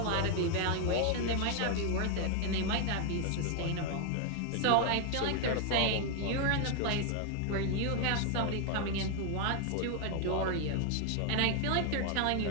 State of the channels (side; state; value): both; different; correlation 0.00